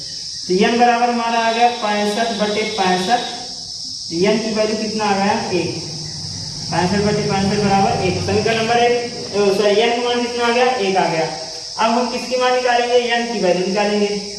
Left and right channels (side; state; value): both; identical; correlation 1.00